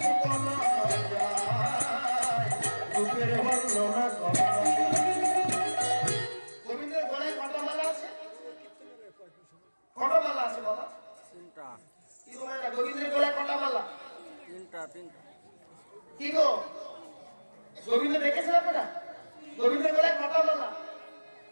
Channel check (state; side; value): inverted; both; correlation -1.00